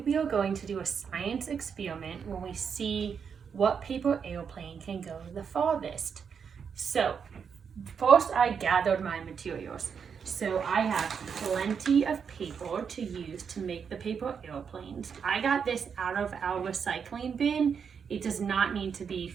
we are going to do a science experiment where we see what paper airplane can go the farthest. So first I gathered my materials. So I have plenty of paper to use to make the paper airplanes. I got this out of our recycling bin. It does not need to be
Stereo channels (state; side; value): quieter; left; 6.7 dB